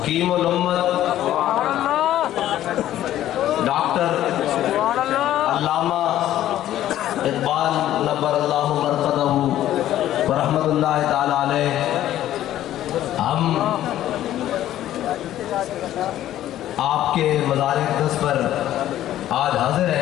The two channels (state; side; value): quieter; right; 12.8 dB